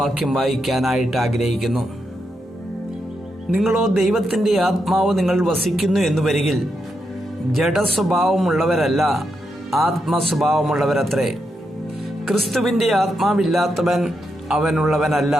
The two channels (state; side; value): normal; both; correlation 0.83